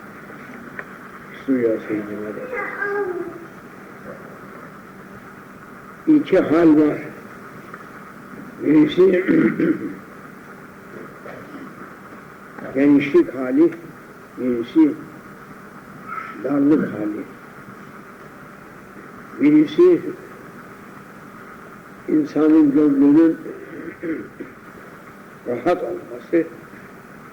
suya seyyidime de. İki hal var. Birisi genişlik hali, birisi darlık hali. Birisi insanın gönlünün rahat olması,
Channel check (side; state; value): both; identical; correlation 1.00